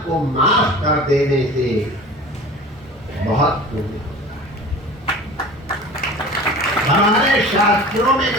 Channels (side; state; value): both; normal; correlation 0.39